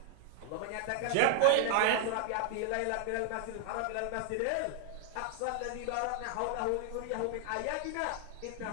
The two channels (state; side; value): different; both; correlation 0.00